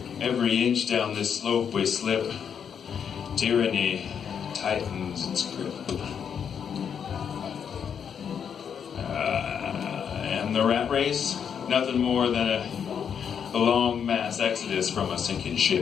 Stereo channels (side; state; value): right; quieter; 7.6 dB